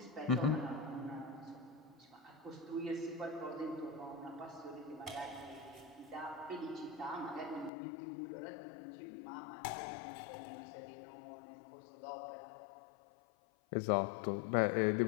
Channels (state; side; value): drops out; right; at 7.7 s